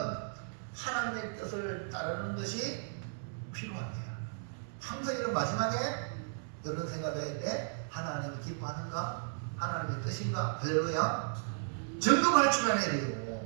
하나님의 뜻을 따르는 것이 필요합니다. 항상 이런 마지막에 이런 생각을 할 때 하나님이 기뻐하는가? 하나님의 뜻인가? 할렐루야. 점검할 줄 아는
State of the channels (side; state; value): left; silent; digital silence